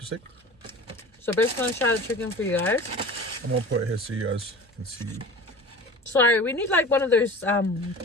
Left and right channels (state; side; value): normal; both; correlation 0.37